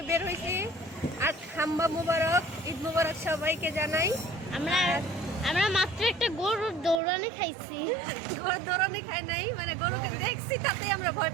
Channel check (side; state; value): left; drops out; at 7.0 s